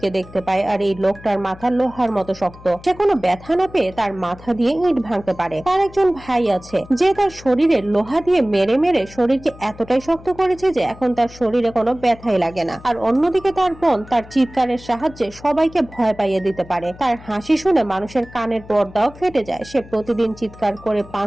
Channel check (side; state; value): left; noise; hum, 19 dB below the sound